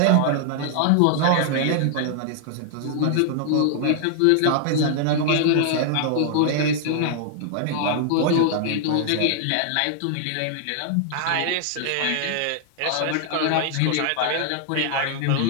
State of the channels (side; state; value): both; different; correlation -0.01